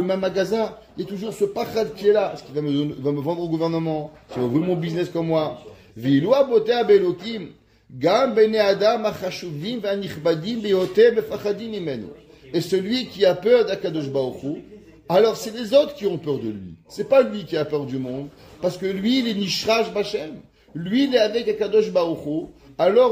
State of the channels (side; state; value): both; identical; correlation 1.00